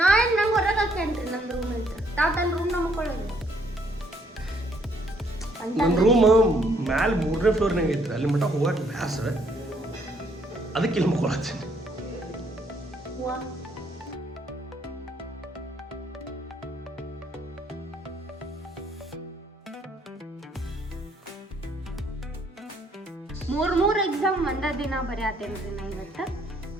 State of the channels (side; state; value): both; normal; correlation 0.67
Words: ಹೊರಗೆ ಹಾಕೇನ್ರಿ ನನ್ನ ರೂಮ್ ಅಂತ. ತಾವು ತನ್ನ ರೂಮ್ನಾಗ ಮುಕ್ಕೊಳ್ಳೋದು. ನನ್ನ ರೂಮ್ ಮ್ಯಾಲೆ 3ನೇ ಫ್ಲೋರ್ನಾಗ ಐತ್ರಿ. ಅಲ್ಲಿ ಮಟ್ಟ ಹೋಗಕ್ಕೆ ಬ್ಯಾಸರ, ಅದಕ್ಕೆ ಇಲ್ಲಿ ಮುಕ್ಕೊಳತ್ತೀನಿ. ಮೂರ್ ಎಕ್ಸಾಮ್ ಒಂದ ದಿನ ಬರೆಯತ್ತೇನ್ರಿ ನಾ ಇವತ್ತು.